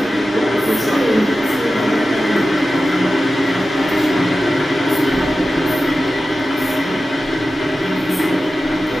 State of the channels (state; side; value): normal; both; correlation 0.93